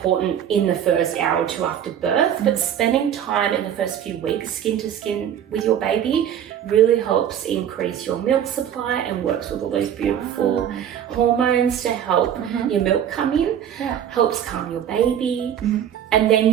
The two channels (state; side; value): quieter; left; 9.7 dB